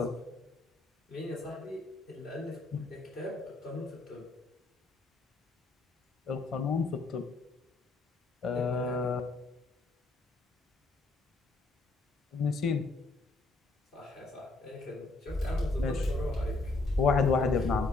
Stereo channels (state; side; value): quieter; right; 3.4 dB